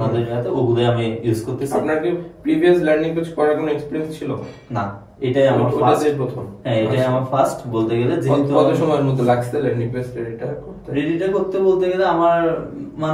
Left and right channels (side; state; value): both; identical; correlation 1.00